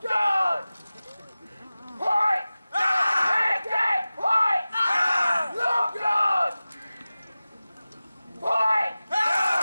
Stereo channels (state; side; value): inverted; both; correlation -0.97